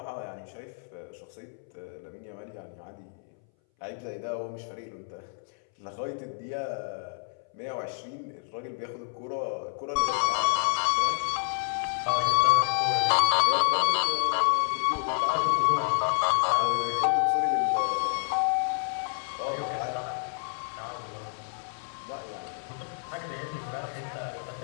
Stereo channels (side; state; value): right; silent; 58 dB below the other